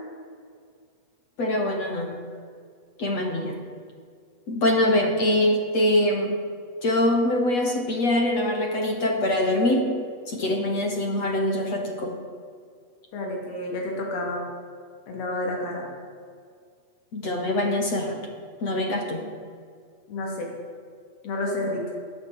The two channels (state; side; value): late; right; 8.2 ms